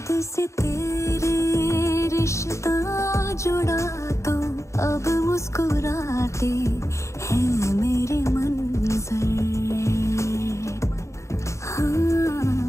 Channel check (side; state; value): right; late; 0.14 ms